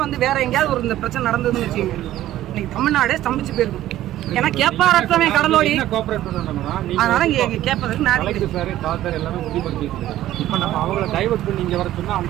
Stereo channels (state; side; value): quieter; left; 13.8 dB